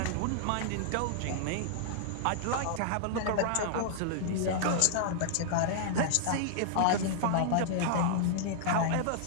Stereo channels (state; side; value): different; both; correlation -0.01